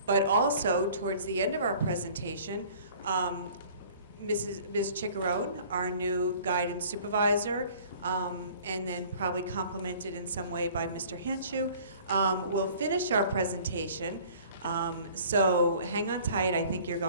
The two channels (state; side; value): inverted; both; correlation -0.50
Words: but also towards the end of our presentation, Ms. Chiccarone, our new guidance supervisor, and then probably complemented in some way by Mr. Hanshu, will finish our presentation. So hang on tight. I think you're